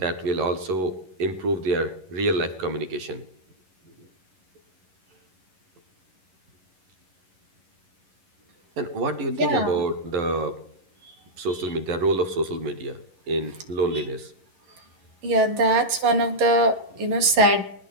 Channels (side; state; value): left; late; 11 ms